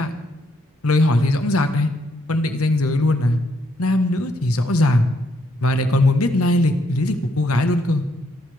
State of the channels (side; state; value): both; normal; correlation 0.73